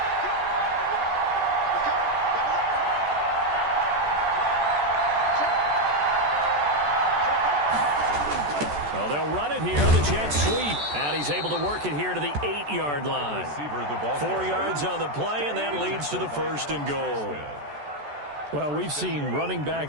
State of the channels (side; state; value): left; late; 14 ms